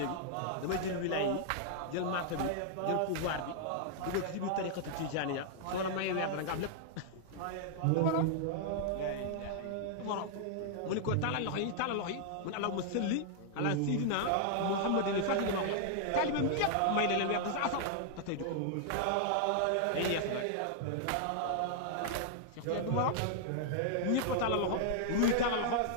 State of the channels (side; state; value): both; different; correlation -0.01